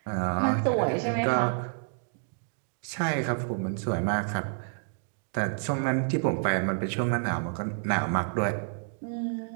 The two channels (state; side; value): silent; left; digital silence